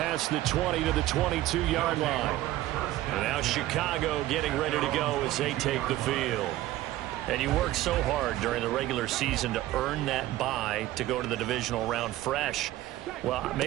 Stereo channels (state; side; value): quieter; left; 15.4 dB